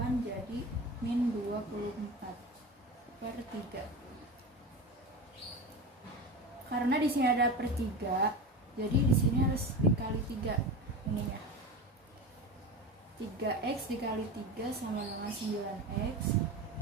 jadi min 24 per 3. Karena di sini ada per 3, jadi di sini harus dikali 3 ininya. 3x dikali 3 sama dengan 9x.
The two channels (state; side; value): normal; both; correlation 0.26